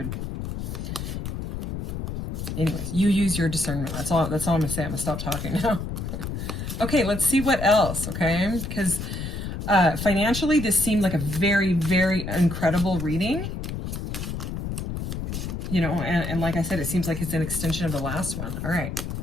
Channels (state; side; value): noise; left; rumble, 5 dB below the sound